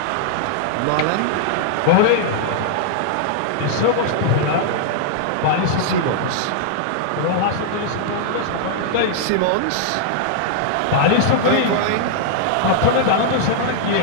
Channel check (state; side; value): different; both; correlation -0.01